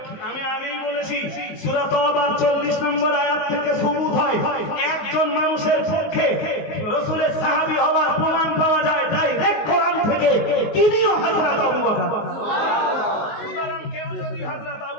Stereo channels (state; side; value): late; right; 19 ms